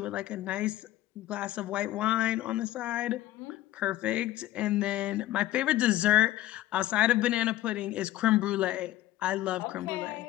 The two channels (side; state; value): right; quieter; 15.0 dB